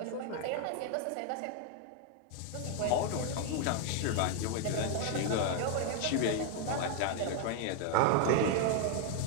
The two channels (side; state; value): both; different; correlation 0.00